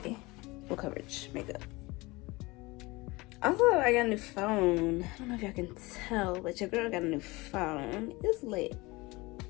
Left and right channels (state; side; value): quieter; right; 22.7 dB